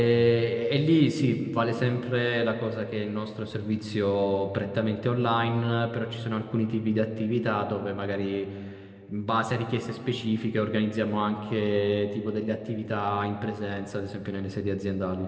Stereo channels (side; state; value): both; identical; correlation 1.00